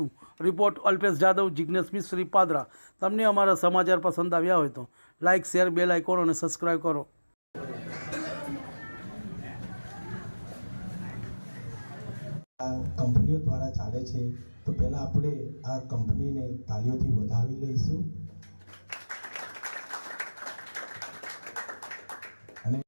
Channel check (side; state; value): both; inverted; correlation -1.00